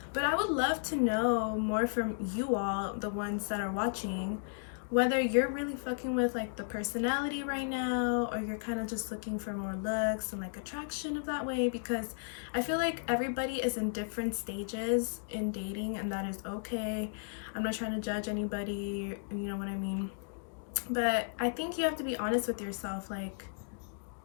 But I would love to know more from you all, the ones that are watching, whether you're really fucking with like the personality right now, or you're kind of just looking for more looks and like attraction of that way, because I feel like everybody is in different stages in dating, and that is okay. I'm not trying to judge anybody, you know what I mean? But I think you have to be honest with yourself, like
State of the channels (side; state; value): right; silent; digital silence